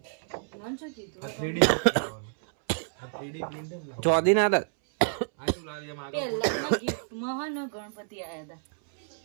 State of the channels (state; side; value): silent; left; 58 dB below the other